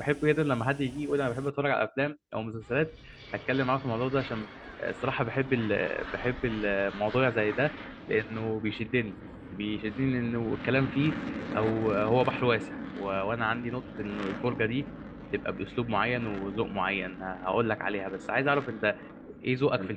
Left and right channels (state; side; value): identical; both; correlation 1.00